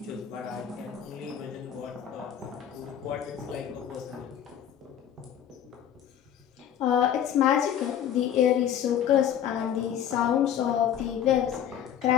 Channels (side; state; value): right; quieter; 9.7 dB